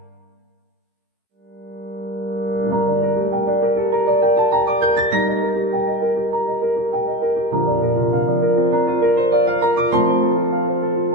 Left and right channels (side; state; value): left; late; 15 ms